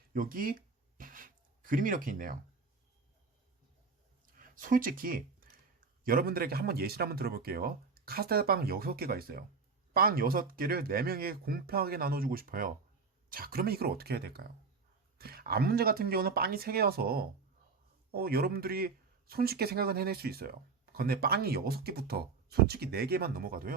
여기 그림이 이렇게 있네요. 솔직히 여러분들에게 한번 예시를 한번 들어볼게요. 카스테라 빵 6개가 있어요. 빵 6개를 4명에게 공평하게 나눠주고 싶어요. 자, 그러면 이걸 어떻게 해야 될까요? 앞 문제 같은 경우는 빵이 3개여서 여러분들이 손쉽게 생각은 해낼 수 있어요. 근데 빵이 6개부터 솔직히 4개만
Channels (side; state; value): left; quieter; 4.7 dB